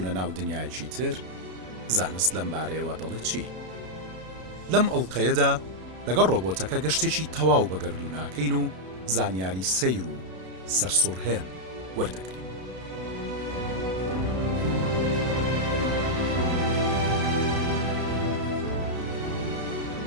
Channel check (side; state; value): left; late; 32 ms